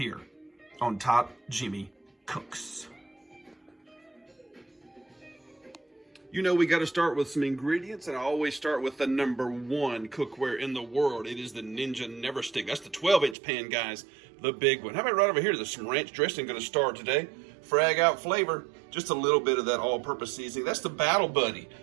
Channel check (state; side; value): drops out; left; at 13.4 s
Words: on Top Jimmy Cooks. You know we got to start with some ingredients, and I always start with the #1 cookware in the world. It is the Ninja Never Stick. That's the 12-inch pan, guys, the big one. How about right over here? There's some ranch dressing going to start today. Frag out flavor, just a little bit of that all-purpose seasoning. That's the Battle Buddy.